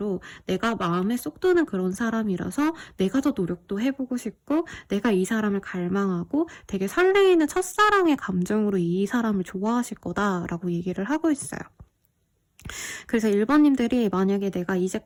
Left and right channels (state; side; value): identical; both; correlation 1.00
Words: 내가 마음에 쏙 드는 그런 사람이라서 내가 더 노력도 해보고 싶고 내가 이 사람을 갈망하고 되게 설레이는 첫사랑의 감정으로 이 사람을 좋아하실 거다라고 얘기를 하고 있어요. 그래서 1번님들이 만약에 내가